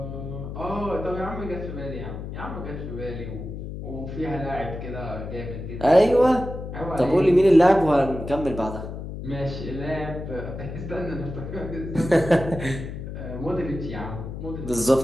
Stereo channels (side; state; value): left; noise; hum, 8 dB below the sound